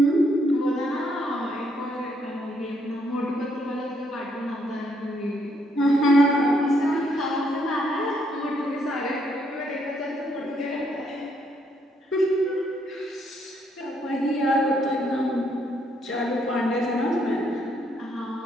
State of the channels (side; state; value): both; normal; correlation 0.72